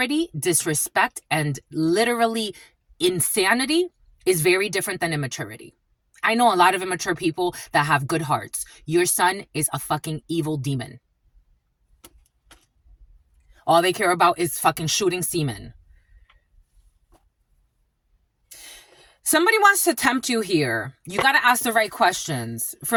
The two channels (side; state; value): both; identical; correlation 1.00